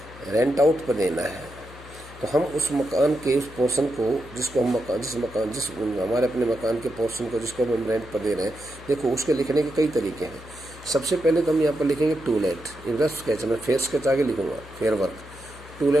रेंट आउट पर देना है। तो हम उस मकान के उस पोर्शन को, जिसको हम हमारे अपने मकान के पोर्शन को जिसको हम रेंट पर दे रहे हैं, देखो उसके लिखने के कई तरीके हैं। सबसे पहले तो हम यहाँ पर लिखेंगे टू लेट। रफ स्केच में फेयर स्केच आगे लिखूंगा, फेयर वर्क। टू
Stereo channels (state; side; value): noise; left; hum, 18 dB below the sound